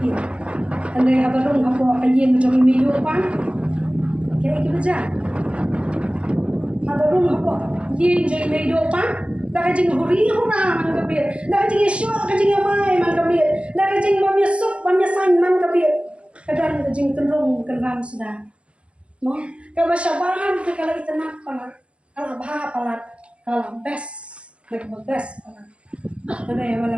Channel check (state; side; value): late; left; 0.059 ms